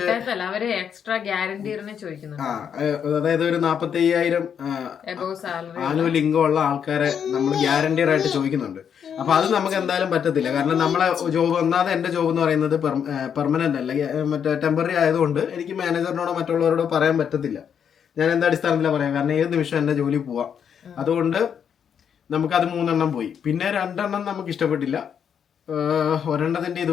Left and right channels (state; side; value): quieter; right; 7.9 dB